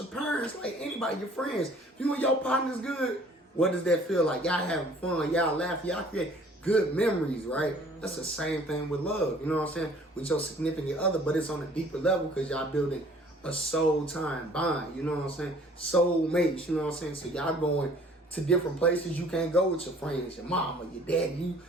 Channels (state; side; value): normal; both; correlation 0.54